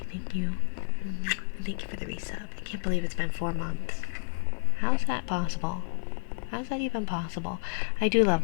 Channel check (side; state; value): right; silent; 56 dB below the other